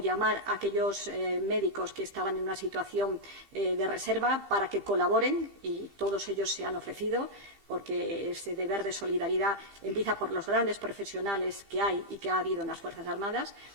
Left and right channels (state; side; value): late; left; 15 ms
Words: a aquellos médicos que estaban en una situación de reserva para que colaboren, y todos ellos se han ofrecido, porque ese deber de solidaridad empieza por los grandes profesionales que hay y que ha habido en las Fuerzas Armadas